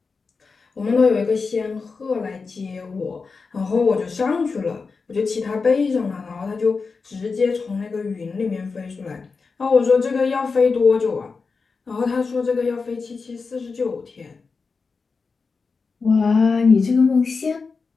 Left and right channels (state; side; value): quieter; right; 4.7 dB